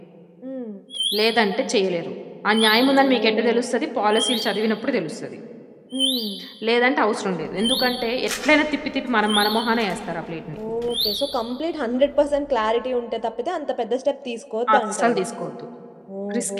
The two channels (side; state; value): both; identical; correlation 1.00